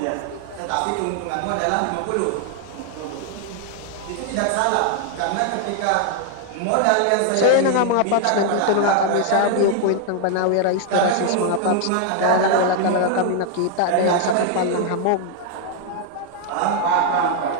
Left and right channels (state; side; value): different; both; correlation 0.00